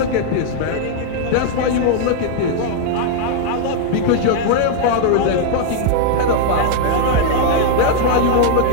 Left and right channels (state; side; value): different; both; correlation 0.00